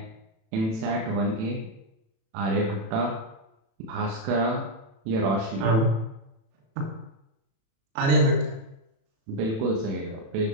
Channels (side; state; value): left; late; 36 ms